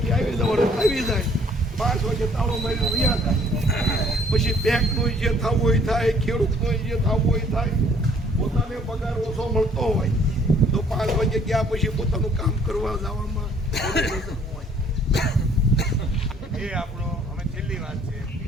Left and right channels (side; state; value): both; normal; correlation 0.60